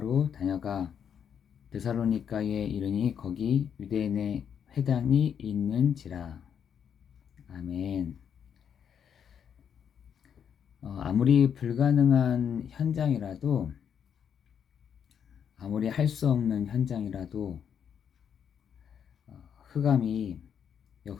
다녀가 데살로니가에 이르니 거기 유대인의 회당이 있는지라. 아멘. 아무리 불가능한 현장이라도, 아무리 할 수 없는 현장이라도, 흑암이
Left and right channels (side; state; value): right; quieter; 8.0 dB